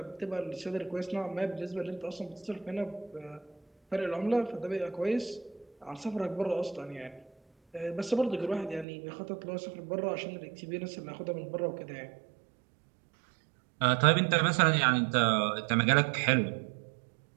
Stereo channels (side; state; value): left; drops out; at 8.8 s